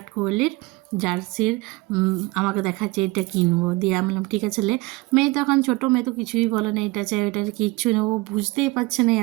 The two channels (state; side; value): quieter; left; 22.5 dB